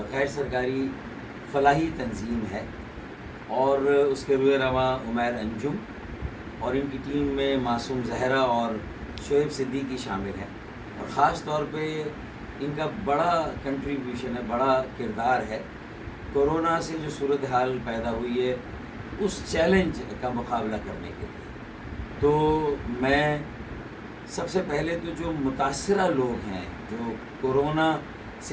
غیر سرکاری فلاحی تنظیم ہے، اور اس کے روح رواں عمیر انجم اور ان کی ٹیم میں معصوم زہرا اور شعیب صدیقی شامل ہیں، اور خاص طور پہ ان کا بڑا کنٹریبیوشن ہے، بڑا کردار ہے کورونا سے جو صورتحال پیدا ہوئی ہے اس چیلنج کا مقابلہ کرنے کے لیے۔ تو میں سب سے پہلے تو جو متاثرہ لوگ ہیں، جو کورونا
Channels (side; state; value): both; identical; correlation 1.00